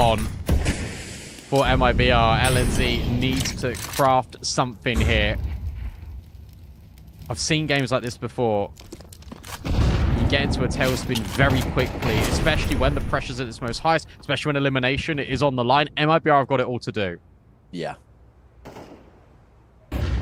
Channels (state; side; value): identical; both; correlation 1.00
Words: for MIBR. LNZ needs to craft something here. I've seen games like this before. You get into a tailspin very quickly, especially when the pressure's at its most highest, especially when elimination is on the line. MIBR have got it all to do. Yeah.